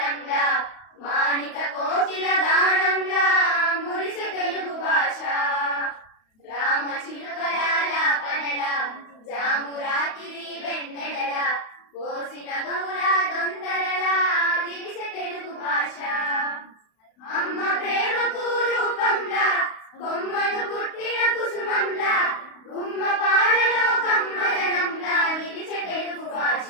మాణిక కోకిల గానంలా మురిసె తెలుగు భాష. రామ చిలుకల పనల జాము రాత్రి వెన్నెల పోసిన గౌల దొందరల విరిసె తెలుగు భాష. అమ్మ ప్రేమకు రూపంలా కొమ్మను పుట్టిన కుసుమంలా గుమ్మ పాలలో కమ్మదనంలా నిలిచే తెలుగు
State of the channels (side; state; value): right; late; 32 ms